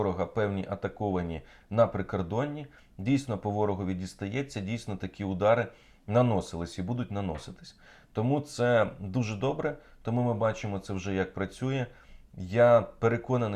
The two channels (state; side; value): identical; both; correlation 1.00